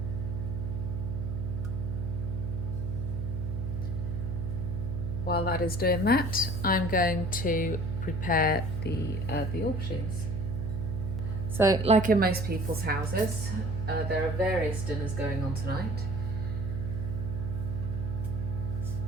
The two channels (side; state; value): right; noise; hum, 3 dB below the sound